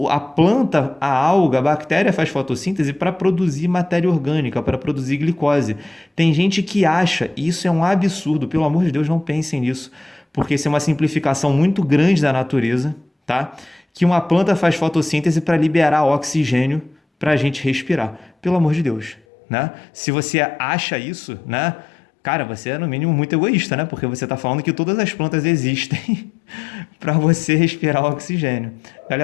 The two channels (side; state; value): right; drops out; at 19.2 s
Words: a planta, a alga, a bactéria faz fotossíntese para produzir matéria orgânica, para produzir glicose. Tem gente que acha, e isso é um absurdo, pelo amor de Deus, não pensem nisso, porque isso é uma simplificação muito grande da natureza, tá? Que uma planta faz fotossíntese para liberar oxigênio para a gente respirar. Pelo amor de Deus, né? Se você acha isso, né? Cara, você é no mínimo muito egoísta, né? Porque você está falando que todas as plantas existem para você respirar oxigênio.